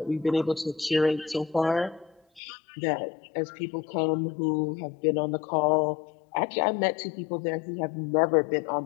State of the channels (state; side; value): drops out; right; at 2.4 s